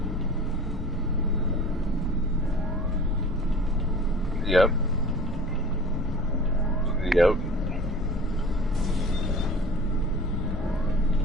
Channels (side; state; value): both; normal; correlation 0.43